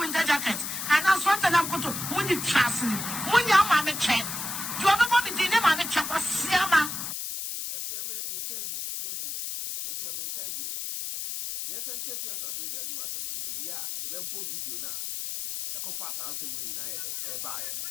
jacket? And I SWAT and I'm going to when you trust me. When your mammy check. You have a mommy dinner, mammy check was Siama. If you are in Kirby, if you are in Kirby, yes, and if you are saying that you are someone, we are a web video now. A fast answer when you are buy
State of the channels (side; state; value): left; noise; hiss, 5 dB below the sound